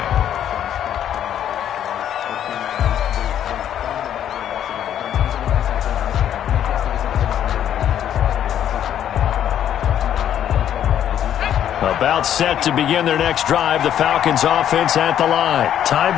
About set to begin their next drive, the Falcons offense at the line. Tie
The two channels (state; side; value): quieter; right; 10.2 dB